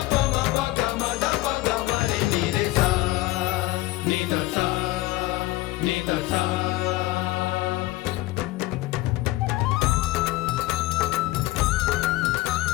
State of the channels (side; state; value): right; quieter; 18.4 dB